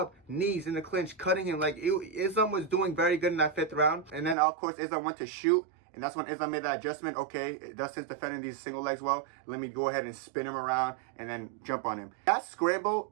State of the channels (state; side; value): drops out; left; at 4.4 s